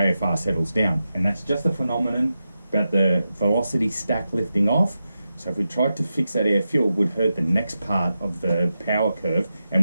settles down. And that's just a phenomenon about the velocity stack lifting off. So if we tried to fix that air fuel, we'd hurt the next part of the power curve and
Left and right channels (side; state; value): both; inverted; correlation -0.90